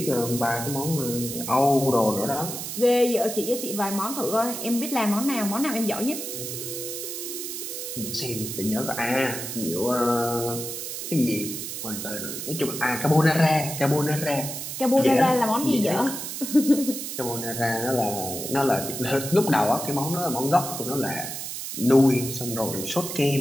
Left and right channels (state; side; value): noise; right; hiss, 6 dB below the sound